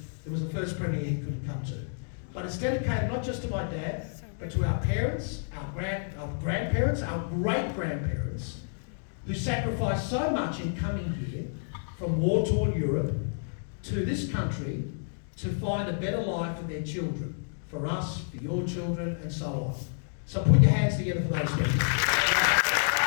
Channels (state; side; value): silent; right; digital silence